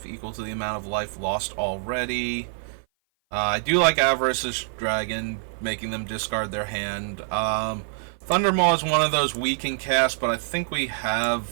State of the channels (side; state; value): left; silent; 56 dB below the other